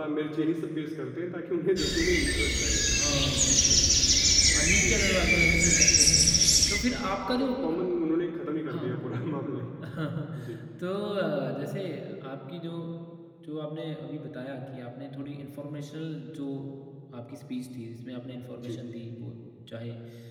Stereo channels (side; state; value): both; identical; correlation 1.00